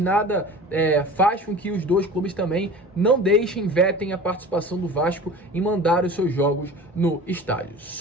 faz com que os dois clubes também não deixem, vetem a participação do Vasco em mandar os seus jogos no estádio.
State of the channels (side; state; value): both; normal; correlation 0.38